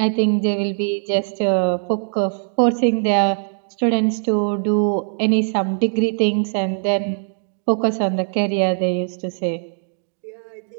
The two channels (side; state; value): left; silent; digital silence